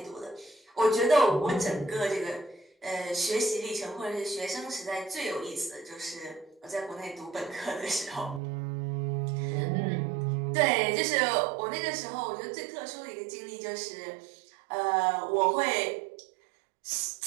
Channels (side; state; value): left; drops out; at 8.4 s